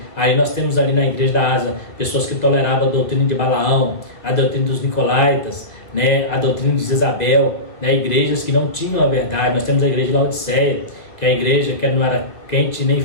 Aí nós temos ali na igreja da Ásia pessoas que toleravam a doutrina de Balaão, a doutrina dos Nicolaítas, né, a doutrina de Jezabel, né, igrejas que não tinham a verdade. Nós temos a igreja de Laodiceia, que é a igreja que não era quente nem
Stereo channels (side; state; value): right; late; 2.1 ms